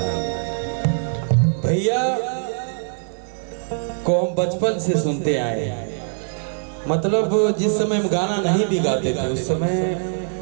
भैया को हम बचपन से सुनते आए हैं। मतलब जिस समय हम गाना नहीं भी गाते थे उस समय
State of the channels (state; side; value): silent; left; 64 dB below the other